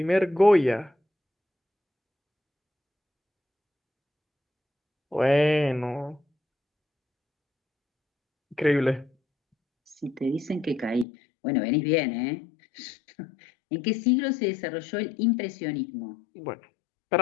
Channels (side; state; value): right; drops out; at 11.1 s